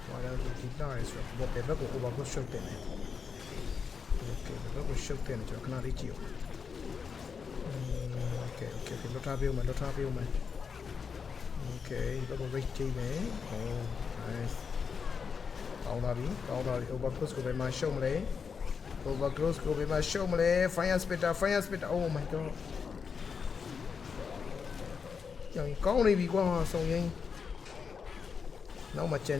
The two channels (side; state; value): right; quieter; 6.0 dB